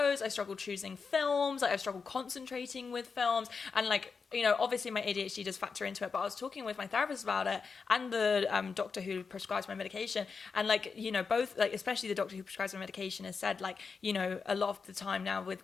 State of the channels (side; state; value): right; quieter; 5.2 dB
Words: I struggled choosing films, like I've struggled concentrating with films, and like, you know, obviously my ADHD does factor into it, but I was talking with my therapist about it and the doctor who prescribes my medication. And like, you know, both, like, especially the doctor who prescribes my medication has said, like, you know, a lot of the time now with